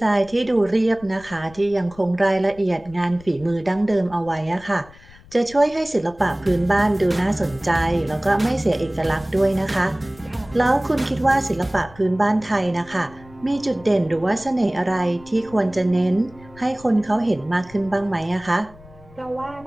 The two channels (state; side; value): noise; left; rumble, 22 dB below the sound